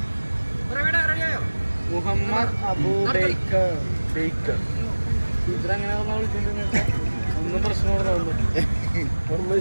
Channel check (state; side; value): inverted; both; correlation -1.00